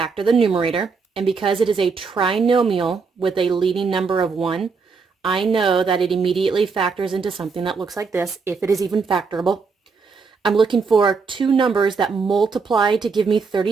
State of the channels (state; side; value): quieter; left; 5.0 dB